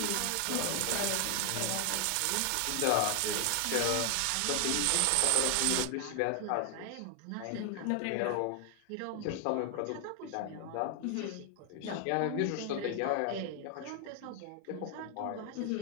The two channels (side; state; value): both; different; correlation 0.00